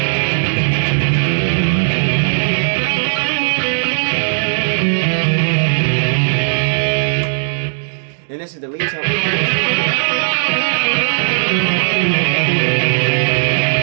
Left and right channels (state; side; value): silent; left; digital silence